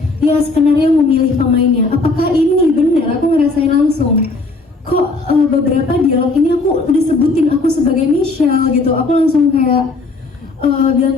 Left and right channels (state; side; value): quieter; right; 3.4 dB